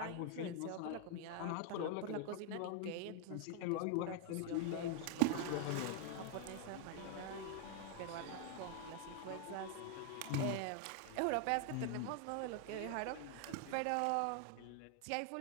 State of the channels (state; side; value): different; both; correlation 0.00